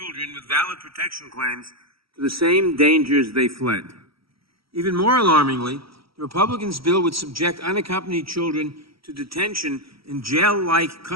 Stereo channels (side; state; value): left; late; 0.75 ms